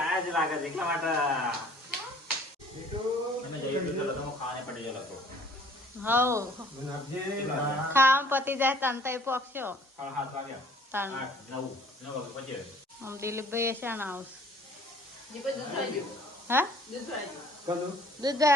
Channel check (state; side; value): normal; both; correlation 0.55